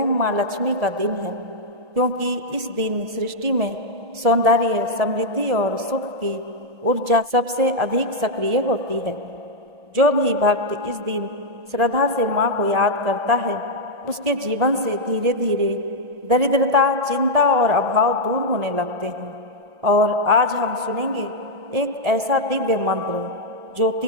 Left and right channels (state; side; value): late; left; 1.7 ms